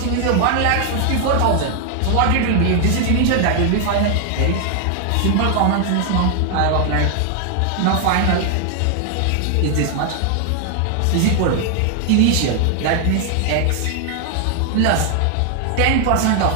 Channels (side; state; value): both; different; correlation 0.00